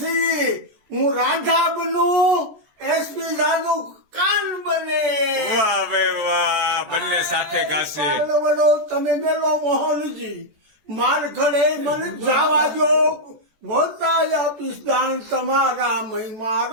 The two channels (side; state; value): left; late; 14 ms